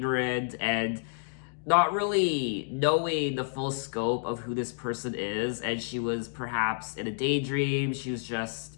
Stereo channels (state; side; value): silent; right; digital silence